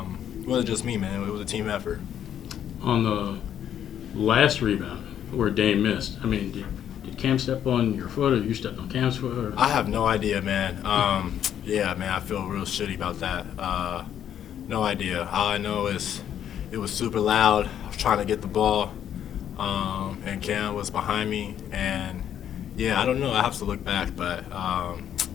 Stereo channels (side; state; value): right; quieter; 9.9 dB